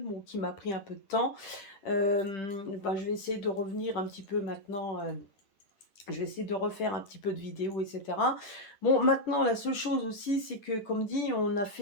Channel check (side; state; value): right; late; 10 ms